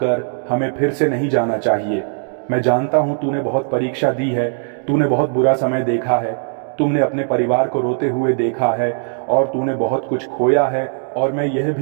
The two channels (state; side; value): silent; left; digital silence